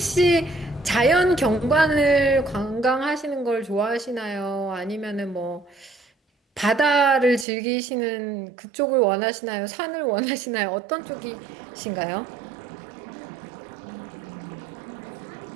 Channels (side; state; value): left; drops out; at 7.5 s